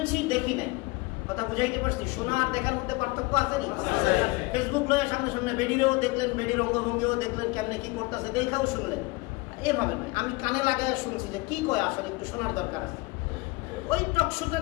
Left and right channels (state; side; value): quieter; right; 24.2 dB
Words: দেখি নাই। কথা বুঝাইতে পারছি? শোনা আর দেখার মধ্যে পার্থক্য আছে না? ফেসবুক লয়ে সামনে সামনে বেডিরেও দেখলেন, বেডির অঙ্গভঙ্গিও দেখলেন, কেমনে কি করতেছে, দেখাও শুনলেন। এভাবে নয়, আমি কানে লাগায় শুনছি যে কি কয়, আসলে একটু শোনার দরকার আছে। ওই